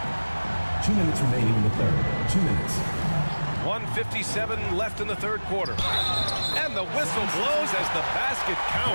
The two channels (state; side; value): inverted; both; correlation -1.00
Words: 2 minutes remaining in the third. 2 minutes. 1:57 left in the third quarter. And the whistle blows as the basket